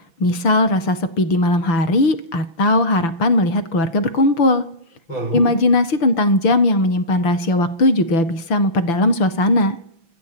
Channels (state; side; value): late; right; 6.0 ms